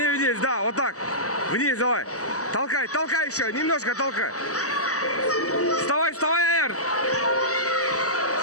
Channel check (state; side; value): late; right; 0.66 ms